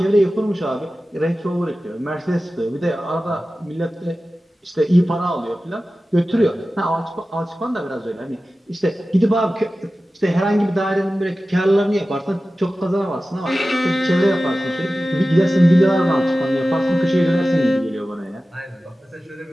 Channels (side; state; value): both; normal; correlation 0.95